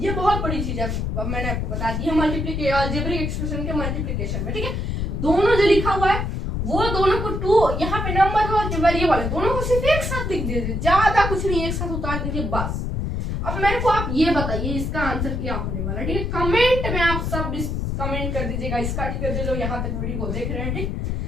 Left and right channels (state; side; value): noise; left; rumble, 2 dB below the sound